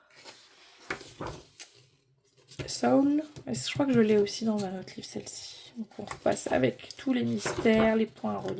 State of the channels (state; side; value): identical; both; correlation 1.00